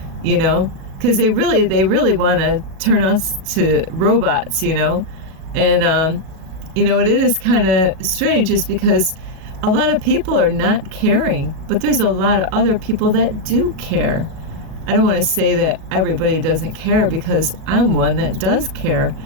because they really want to turn us to robots, and it is kind of strange, is because a lot of people are not caring, but there's a lot of other people that do care. I don't want to say that everybody doesn't care, because I'm one that does care,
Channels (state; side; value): late; left; 37 ms